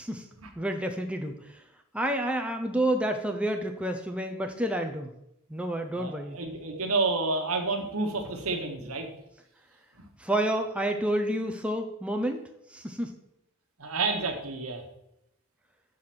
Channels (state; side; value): normal; both; correlation 0.40